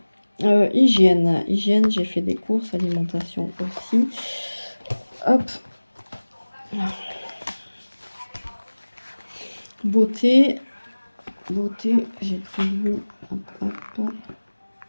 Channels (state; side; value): inverted; both; correlation -1.00